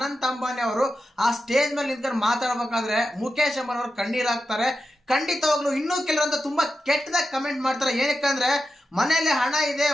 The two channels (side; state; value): both; normal; correlation 0.90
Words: ಅಂಬಾನಿ ಅವರು ಆ ಸ್ಟೇಜ್ ಮೇಲೆ ನಿಂತ್ಕೊಂಡು ಮಾತಾಡ್ಬೇಕಾದ್ರೆ ಮುಖೇಶ್ ಅಂಬಾನಿ ಅವರು ಕಣ್ಣೀರಾಗ್ತಾರೆ. ಖಂಡಿತವಾಗ್ಲೂ ಇನ್ನೂ ಕೆಲವರಂತ ತುಂಬಾ ಕೆಟ್ಟದಾಗ ಕಮೆಂಟ್ ಮಾಡ್ತಾರೆ. ಏನಕ್ಕಂದ್ರೆ ಮನೇಲಿ ಹಣ ಇದೆ,